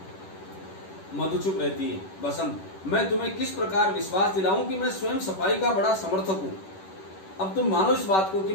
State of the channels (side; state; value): right; late; 10 ms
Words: मधु चुप रहती है। बसंत मैं तुम्हें किस प्रकार विश्वास दिलाऊं कि मैं स्वयं सफाई का बड़ा समर्थक हूं। अब तुम मानो इस बात को कि